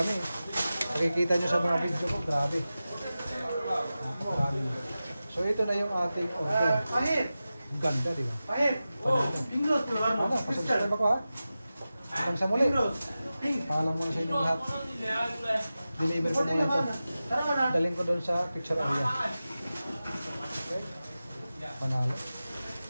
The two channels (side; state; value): both; inverted; correlation -0.94